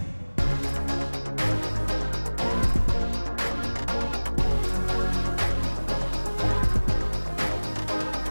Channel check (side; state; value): both; inverted; correlation -1.00